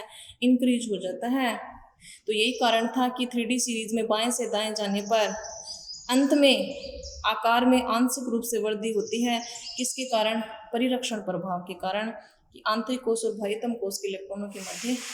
इंक्रीज हो जाता है। तो यही कारण था कि 3D सीरीज में बाएं से दाएं जाने पर अंत में आकार में आंशिक रूप से वृद्धि होती है। किसके कारण? परिरक्षण प्रभाव के कारण, कि आंतरिक कोश और बाह्यतम कोश के इलेक्ट्रॉनों के मध्य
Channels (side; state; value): both; identical; correlation 1.00